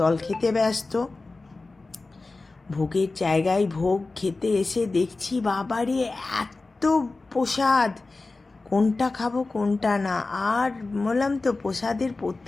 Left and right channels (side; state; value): right; quieter; 3.5 dB